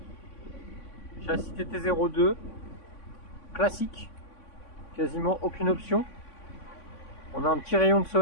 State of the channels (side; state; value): right; late; 3.5 ms